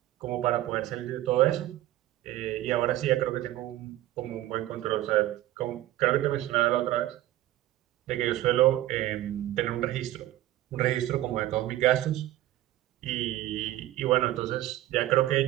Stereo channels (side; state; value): left; quieter; 14.8 dB